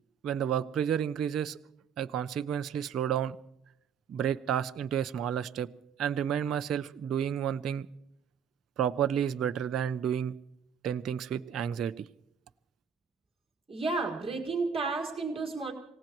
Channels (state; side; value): quieter; left; 7.6 dB